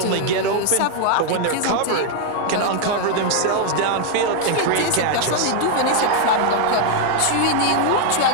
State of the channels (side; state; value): both; different; correlation 0.00